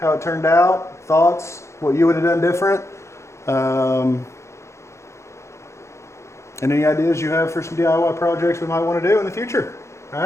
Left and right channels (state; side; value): late; right; 0.14 ms